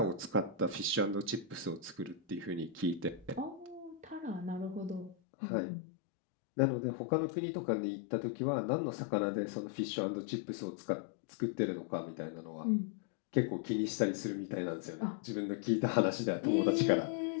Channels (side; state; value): right; drops out; at 5.2 s